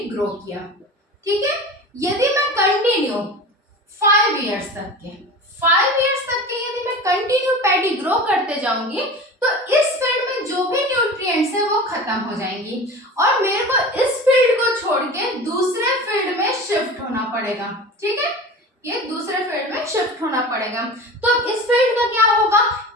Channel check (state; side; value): normal; both; correlation 0.34